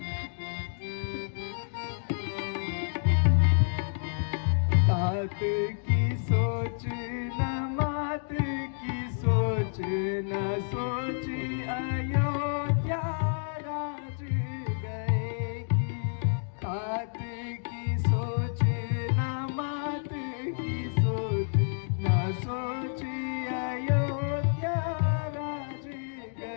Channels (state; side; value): silent; right; digital silence